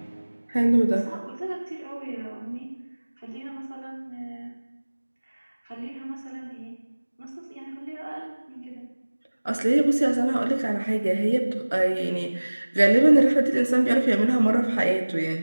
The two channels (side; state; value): both; inverted; correlation -1.00